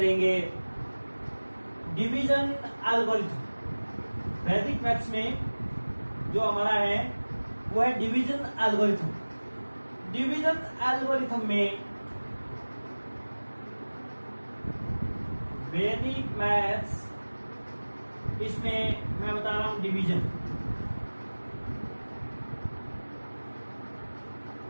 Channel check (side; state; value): both; inverted; correlation -1.00